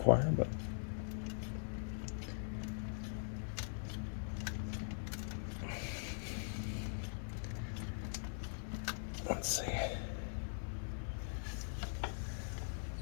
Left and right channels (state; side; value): silent; right; digital silence